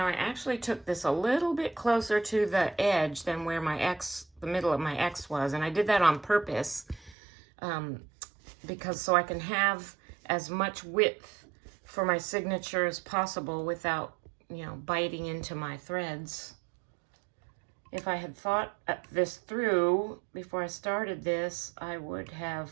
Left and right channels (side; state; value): left; drops out; at 7.2 s